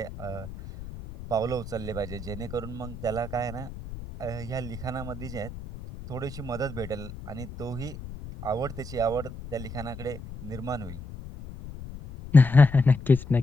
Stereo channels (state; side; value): noise; left; rumble, 12 dB below the sound